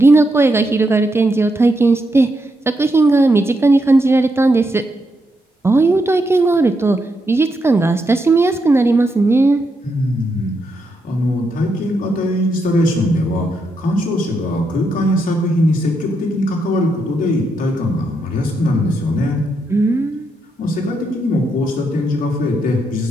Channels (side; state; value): both; normal; correlation 0.81